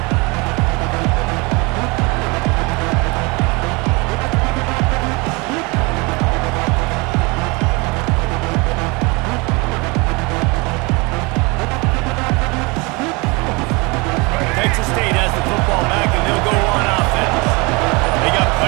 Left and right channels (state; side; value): quieter; left; 27.3 dB